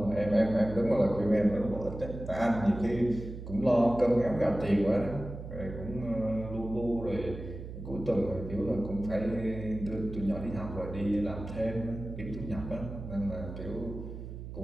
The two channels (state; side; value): noise; right; hum, 10 dB below the sound